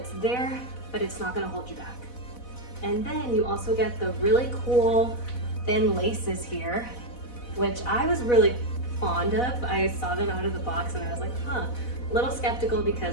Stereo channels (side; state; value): right; late; 4.1 ms